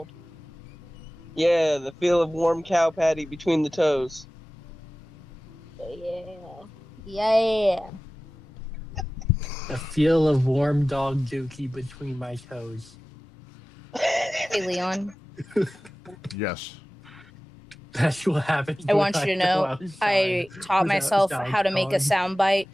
Yeah, the feel of warm cow patty between the toes. Yeah. Yeah. The feel of warm dog dookie between my toes. Hey, Leon. Yes. That's what happens. I when want you to go know outside I taught without myself sound how to make a on. soundbite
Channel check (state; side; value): normal; both; correlation 0.96